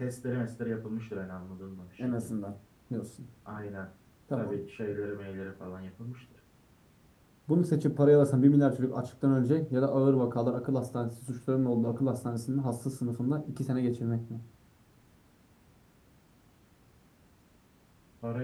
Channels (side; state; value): both; identical; correlation 1.00